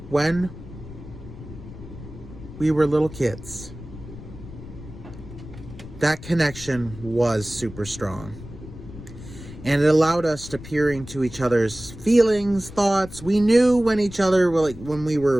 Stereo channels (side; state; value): left; noise; rumble, 14 dB below the sound